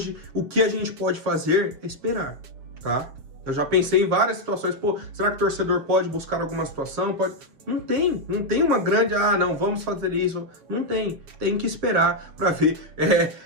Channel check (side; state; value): left; late; 7.0 ms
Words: o que a gente pode fazer é esperar, tá? Eu já pensei em várias situações, pô, será que o torcedor pode buscar alguma situação? Pode... Não tem uma grande, não, vamos fazer isso. Não tem que esperar para ver